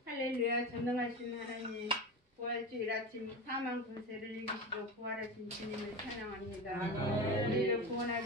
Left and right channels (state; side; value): normal; both; correlation 0.24